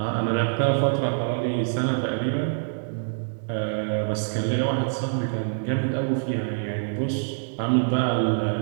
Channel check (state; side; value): silent; left; digital silence